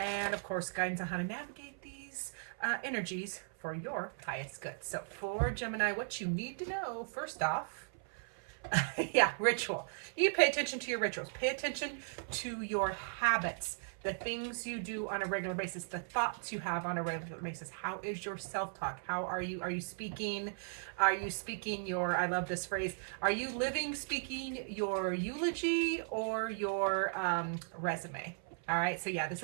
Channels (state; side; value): silent; left; 53 dB below the other